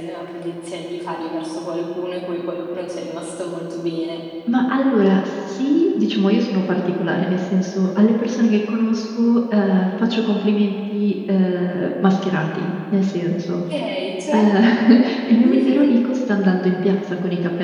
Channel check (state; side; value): identical; both; correlation 1.00